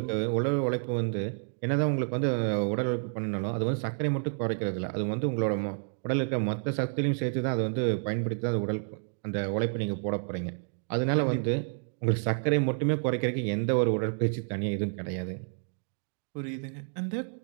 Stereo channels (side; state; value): left; silent; digital silence